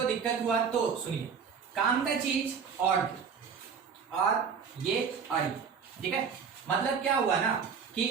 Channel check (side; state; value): left; quieter; 6.5 dB